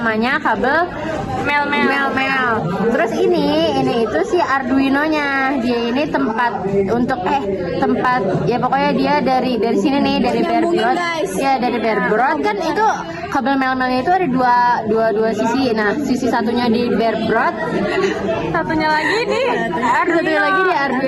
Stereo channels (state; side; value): identical; both; correlation 1.00